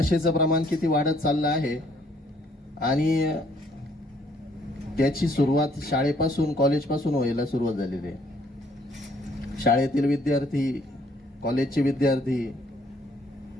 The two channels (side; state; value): both; normal; correlation 0.65